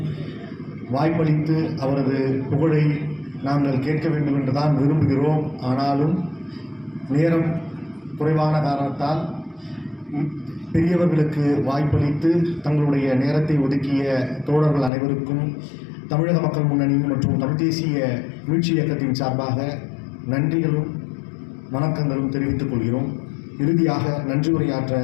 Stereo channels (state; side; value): drops out; right; at 14.9 s